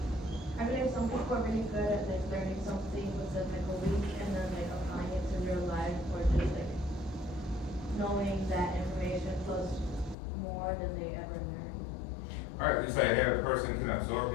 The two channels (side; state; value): right; drops out; at 10.2 s